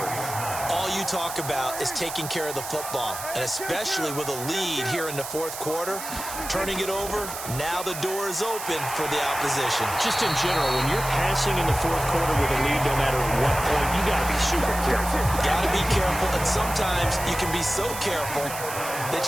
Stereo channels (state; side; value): noise; right; hiss, 8 dB below the sound